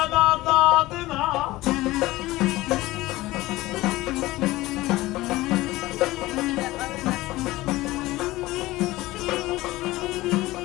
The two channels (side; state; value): right; quieter; 18.4 dB